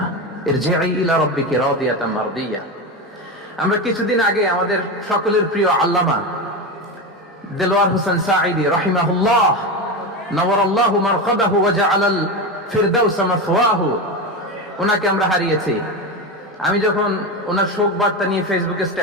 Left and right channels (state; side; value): normal; both; correlation 0.18